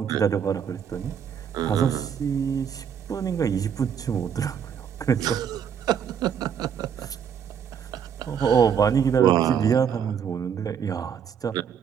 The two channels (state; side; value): quieter; left; 7.9 dB